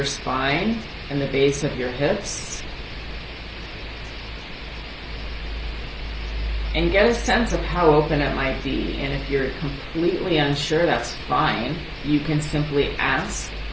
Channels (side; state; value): both; identical; correlation 1.00